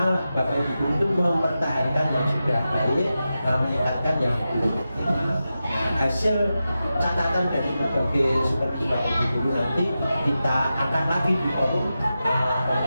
Bapak Ibu itu mempertahankan yang sudah baik, meningkatkan yang belum optimal. Hasil catatan dari berbagai supervisi Bapak Ibu nanti kita akan lagi di forum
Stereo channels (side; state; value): both; inverted; correlation -0.91